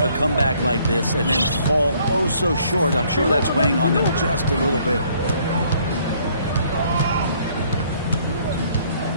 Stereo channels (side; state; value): both; inverted; correlation -0.63